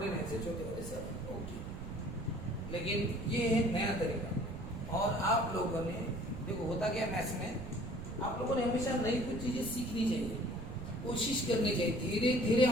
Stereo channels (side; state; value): right; noise; rumble, 9 dB below the sound